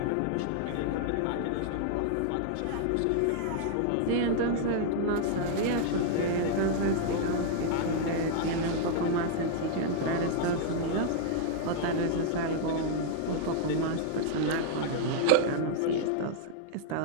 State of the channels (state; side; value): different; both; correlation -0.01